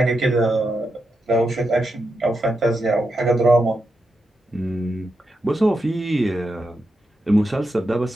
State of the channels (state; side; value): normal; both; correlation 0.86